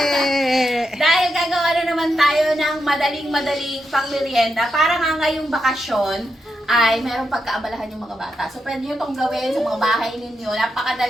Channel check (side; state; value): both; normal; correlation 0.85